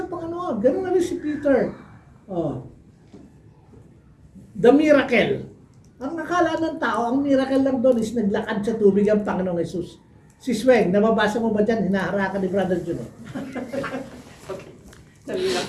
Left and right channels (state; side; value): identical; both; correlation 1.00